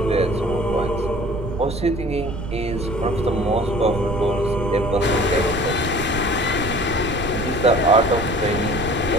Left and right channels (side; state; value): right; noise; rumble, 7 dB below the sound